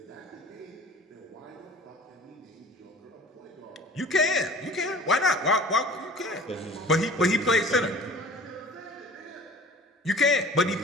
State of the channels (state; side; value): normal; both; correlation 0.45